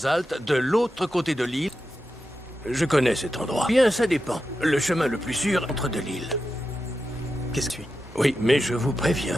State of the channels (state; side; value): normal; both; correlation 0.89